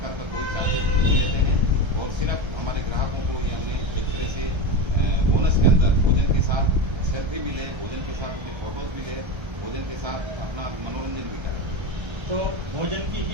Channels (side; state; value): left; late; 1.3 ms